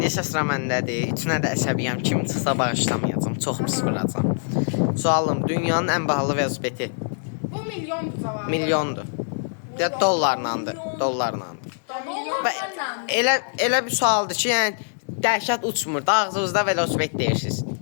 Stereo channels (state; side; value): silent; right; digital silence